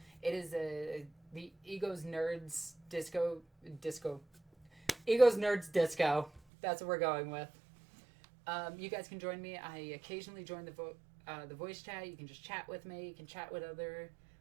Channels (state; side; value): drops out; left; at 6.4 s